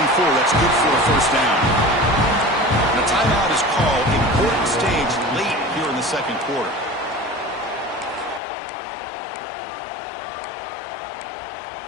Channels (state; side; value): drops out; right; at 8.4 s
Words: That's good for a first down. And a timeout is called. Important stage late here in the second quarter.